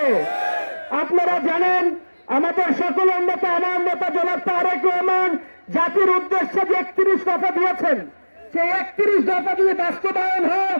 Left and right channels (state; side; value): inverted; both; correlation -1.00